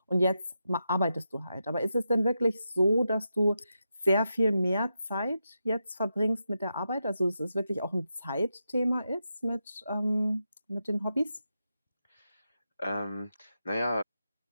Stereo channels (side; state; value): both; inverted; correlation -0.87